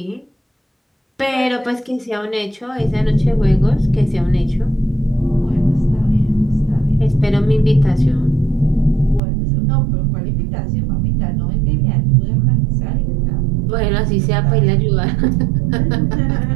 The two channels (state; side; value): drops out; left; at 9.2 s